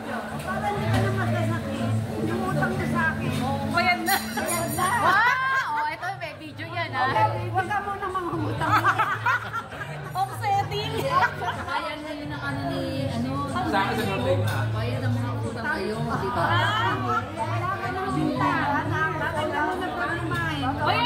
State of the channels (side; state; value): both; identical; correlation 1.00